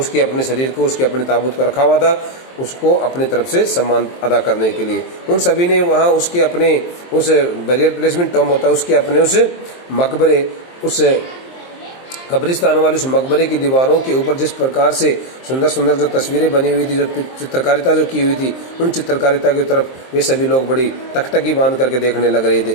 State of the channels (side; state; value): right; late; 23 ms